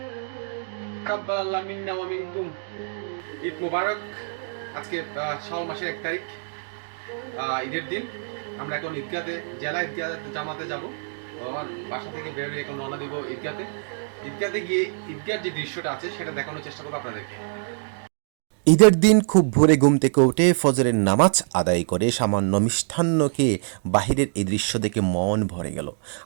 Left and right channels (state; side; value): silent; left; digital silence